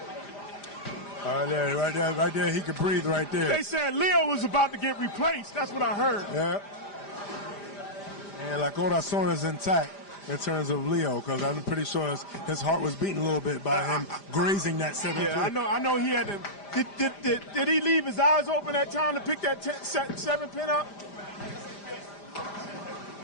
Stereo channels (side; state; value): right; late; 5.0 ms